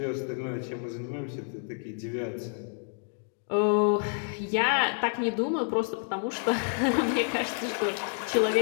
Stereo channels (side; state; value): right; silent; 59 dB below the other